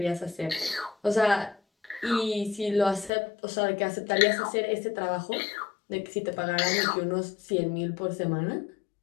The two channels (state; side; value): drops out; right; at 3.1 s